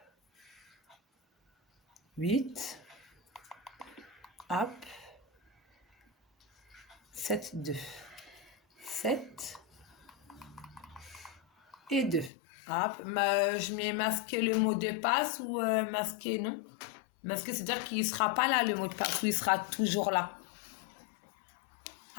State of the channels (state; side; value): drops out; right; at 12.3 s